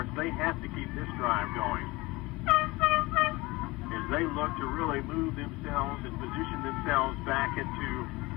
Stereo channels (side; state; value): right; quieter; 22.1 dB